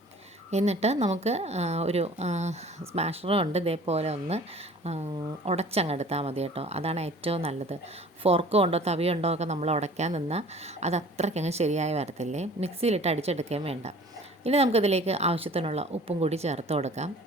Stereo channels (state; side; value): normal; both; correlation 0.47